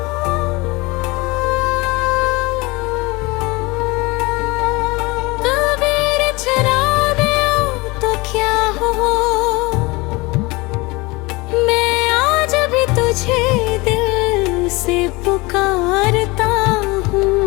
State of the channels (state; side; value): quieter; right; 23.9 dB